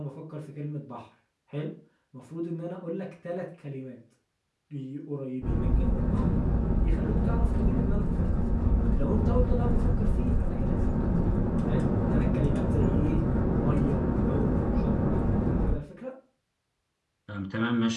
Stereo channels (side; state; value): both; identical; correlation 1.00